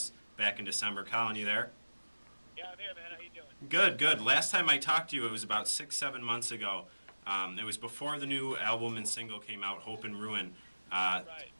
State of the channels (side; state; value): both; inverted; correlation -1.00